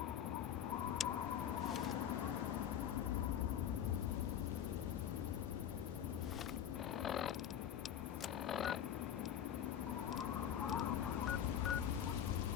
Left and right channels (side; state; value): right; quieter; 9.7 dB